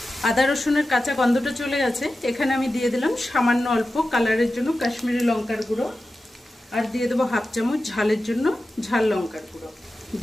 আদা রসুনের কাঁচা গন্ধটা চলে গেছে। এখানে আমি দিয়ে দিলাম সামান্য অল্প কালারের জন্য কাশ্মীরি লঙ্কার গুঁড়ো, আর দিয়ে দেবো হাফ চামচ ঝালের জন্য ঝাল লঙ্কার গুঁড়ো।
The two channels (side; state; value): both; normal; correlation 0.93